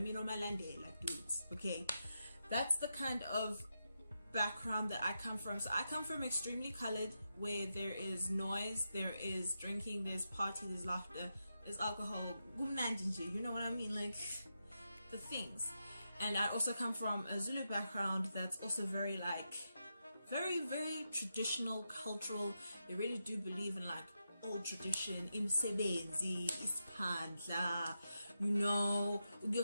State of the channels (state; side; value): inverted; both; correlation -0.87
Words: Malandela dudes. Okay, that's the kind of background that I come from. So I come from extremely colored, where there is noise, there is drinking, there's party, there's laughter, there's alcohol, you know what I mean, like the things. And I also come from a Zulu background that's also very like very traditional, cultural. They really do believe in like old tradition, imsebenzi, ispandla, you know,